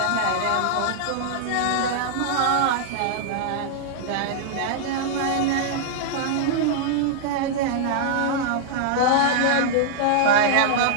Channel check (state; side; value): different; both; correlation -0.01